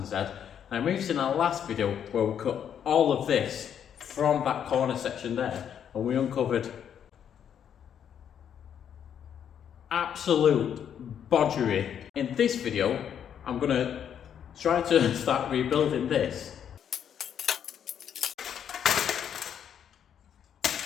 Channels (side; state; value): right; quieter; 8.8 dB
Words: Z. Now we've seen our last video where we cut all of this from that corner section there and we uncovered absolute bodgery. In this video I'm going to try to start rebuilding this.